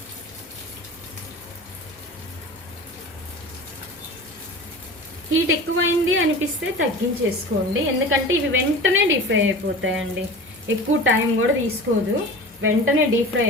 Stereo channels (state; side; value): normal; both; correlation 0.36